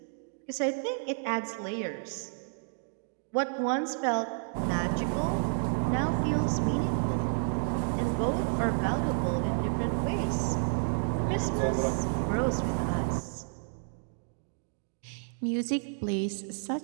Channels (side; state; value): left; silent; 57 dB below the other